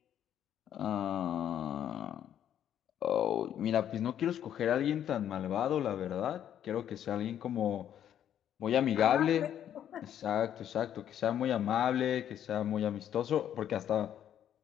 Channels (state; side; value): quieter; right; 10.2 dB